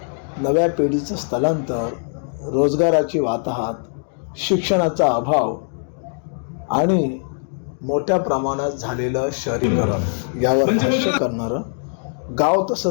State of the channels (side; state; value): right; silent; digital silence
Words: नव्या पिढीचं स्थलांतर, रोजगाराची वाताहत, शिक्षणाचा अभाव आणि मोठ्या प्रमाणात झालेलं शहरीकरण यावर भाष्य करणारं गाव